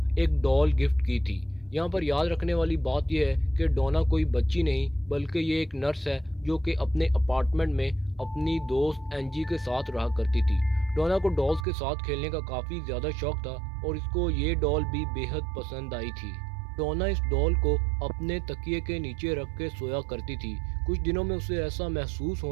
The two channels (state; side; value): drops out; left; at 11.7 s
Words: ایک ڈول گفٹ کی تھی۔ یہاں پر یاد رکھنے والی بات یہ ہے کہ ڈونا کوئی بچی نہیں بلکہ یہ ایک نرس ہے جو کہ اپنے اپارٹمنٹ میں اپنی دوست اینجی کے ساتھ رہا کرتی تھی۔ ڈونا کو ڈالز کے ساتھ کھیلنے کا کافی زیادہ شوق تھا اور اس کو یہ ڈال بھی بے حد پسند آئی تھی۔ ڈونا اس ڈال کو اپنے تکیے کے نیچے رکھ کے سویا کرتی تھی۔ کچھ دنوں میں اسے ایسا محسوس